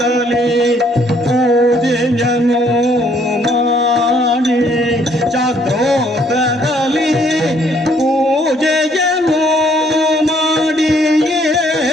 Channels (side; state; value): both; normal; correlation 0.65